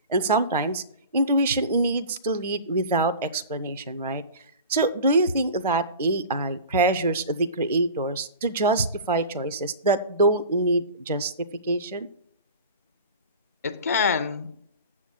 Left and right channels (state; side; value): inverted; both; correlation -0.36